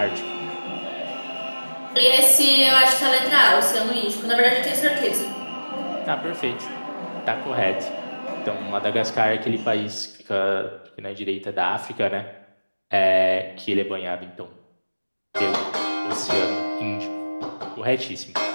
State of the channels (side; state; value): both; inverted; correlation -1.00